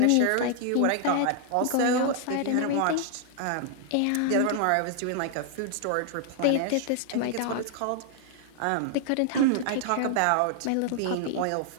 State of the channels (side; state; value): both; different; correlation 0.00